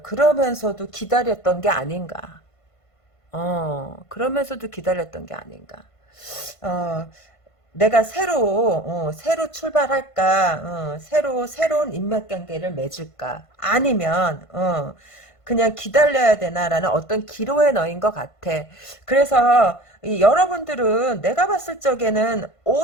그러면서도 기다렸던 게 아닌가. 그러면서도 기다렸던 게 아닌가. 어, 내가 새로 출발할까, 새로운 인맥관계를 맺을까, 아니면, 그냥 기다려야 되나라는 어떤 기로에 넣인 것 같아. 그래서, 여러분들은 내가 봤을 적에는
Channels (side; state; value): right; late; 1.5 ms